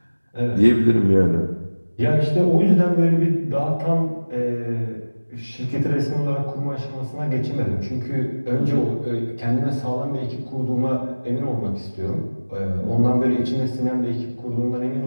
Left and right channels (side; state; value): both; inverted; correlation -1.00